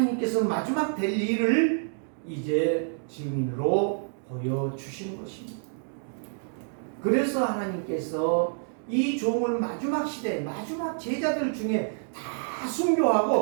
마지막 될 일을 이제 증인으로 보여주시는 것입니다. 그래서 하나님께서 이 종을 마지막 시대, 마지막 제자들 중에 다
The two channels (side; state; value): left; silent; digital silence